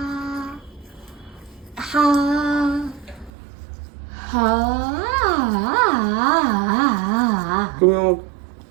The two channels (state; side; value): drops out; left; at 3.3 s